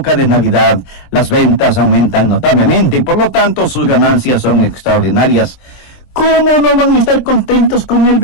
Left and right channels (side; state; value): right; late; 23 ms